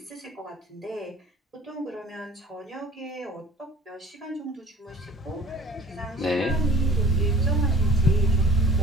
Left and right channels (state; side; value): normal; both; correlation 0.47